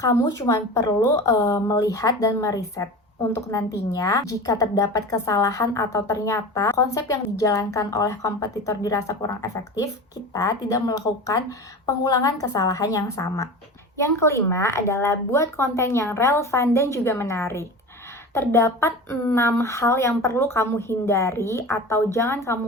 cuma perlu melihat dan meriset. Untuk nantinya, jika terdapat kesalahan atau ternyata konsep yang dijalankan oleh kompetitor dirasa kurang efektif, kita tidak melakukan pengulangan kesalahan yang sama. Yang kelima adalah buat konten yang relevan dan juga menarik. Terdapat 6 hal yang perlu kamu hindari atau jangan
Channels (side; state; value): both; normal; correlation 0.32